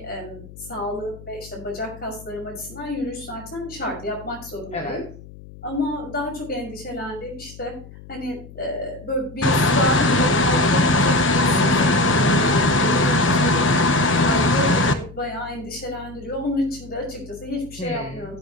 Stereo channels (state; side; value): noise; left; hum, 18 dB below the sound